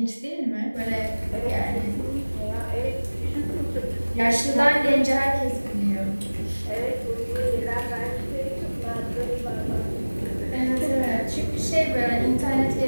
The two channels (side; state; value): both; inverted; correlation -1.00